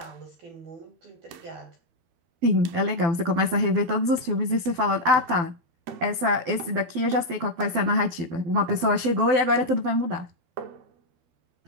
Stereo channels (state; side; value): late; left; 12 ms